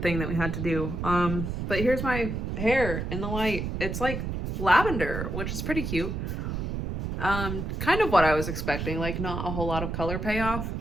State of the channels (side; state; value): right; noise; rumble, 3 dB below the sound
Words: that we had to do. But here's my hair in the light. It's like lavender, which is pretty cute. Kind of what I was expecting, like not a whole lot of color payoff,